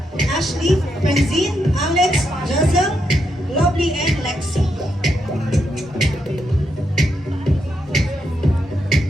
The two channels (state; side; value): normal; both; correlation 0.81